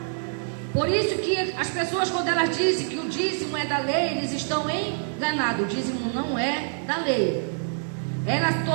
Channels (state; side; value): silent; left; 58 dB below the other